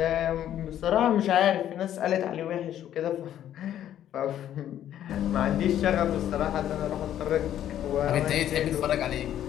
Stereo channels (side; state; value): right; quieter; 11.2 dB